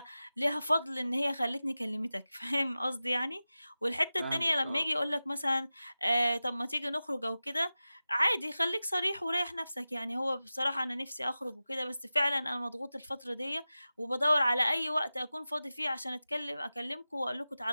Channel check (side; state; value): both; inverted; correlation -0.95